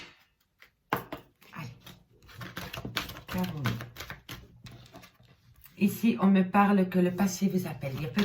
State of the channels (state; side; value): identical; both; correlation 1.00